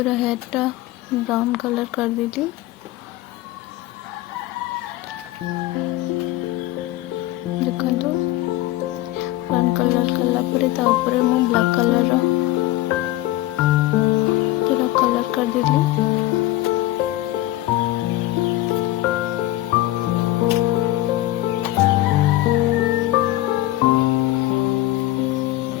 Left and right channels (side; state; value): right; quieter; 16.3 dB